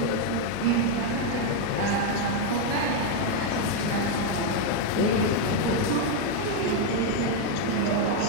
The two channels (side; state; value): both; different; correlation 0.01